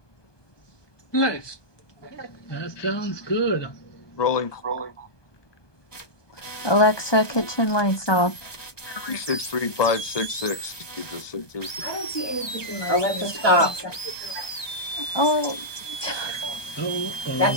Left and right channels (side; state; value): right; late; 1.2 ms